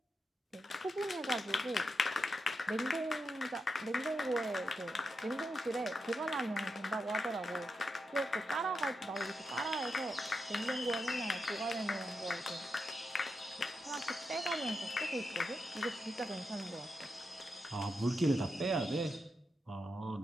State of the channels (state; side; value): normal; both; correlation 0.86